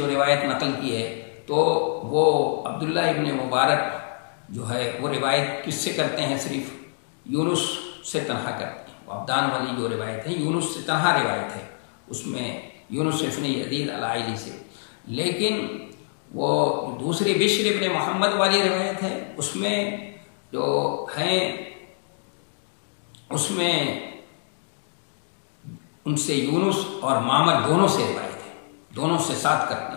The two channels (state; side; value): silent; right; digital silence